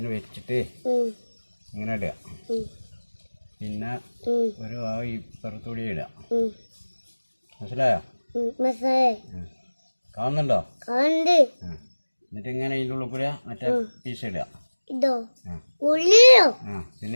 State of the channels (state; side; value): inverted; both; correlation -1.00